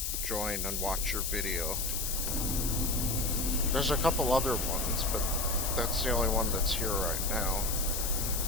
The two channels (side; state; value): left; noise; hiss, 1 dB below the sound